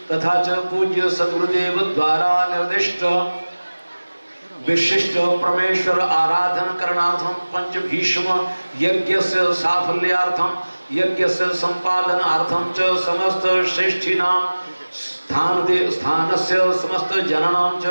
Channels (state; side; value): inverted; both; correlation -1.00